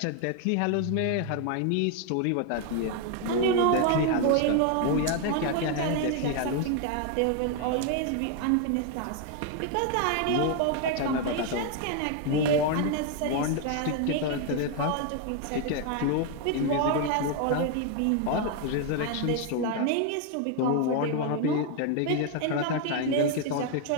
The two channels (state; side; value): different; both; correlation 0.01